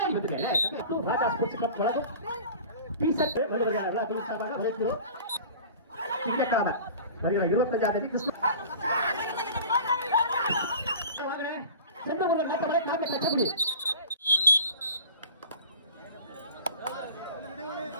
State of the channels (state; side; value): inverted; both; correlation -0.40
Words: வந்துருக்கேன் ராஜா ஸ்போர்ட்ஸ் கிளப் வழங்கும் பீசட் எல்லா சார்பாக வழங்குகிறோம். திங்கட்கிழமை வருகிற 25ஆம் தேதி கிறிஸ்துமஸ்